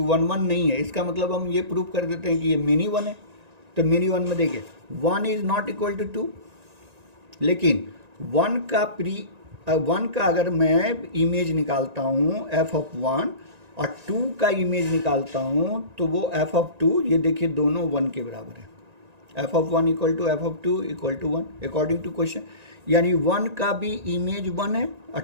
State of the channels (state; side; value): late; left; 1.9 ms